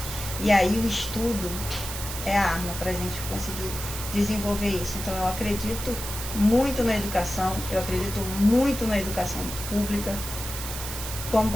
E aí o estudo é a arma para a gente conseguir desenvolver isso. Então eu acredito muito na educação, eu acredito muito na educação pública. Como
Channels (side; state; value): right; noise; hiss, 7 dB below the sound